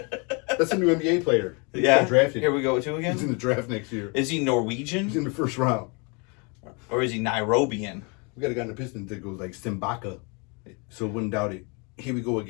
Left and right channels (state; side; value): quieter; right; 32.1 dB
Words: That's a new NBA player. He Yeah, got drafted. here we go, two again. He's in the draft next year. Is he He's Norwegian in the first round. or is he Nairobian? We got a guy in the Pistons that goes like Simbaka. So wouldn't doubt it. Here we go